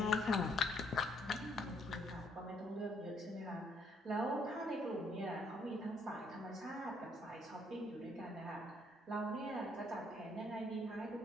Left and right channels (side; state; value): both; normal; correlation 0.68